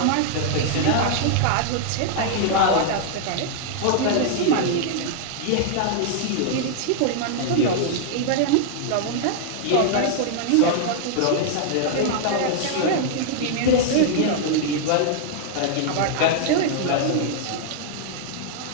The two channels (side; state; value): both; different; correlation -0.01